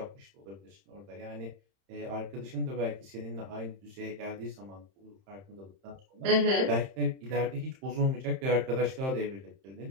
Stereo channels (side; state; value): left; late; 31 ms